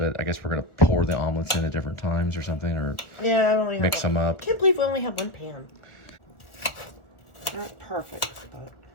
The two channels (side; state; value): right; late; 1.2 ms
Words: I guess we're gonna pour the omelets in at different times or something, or mix them up. I can't believe we only have one pan. Not perfect, but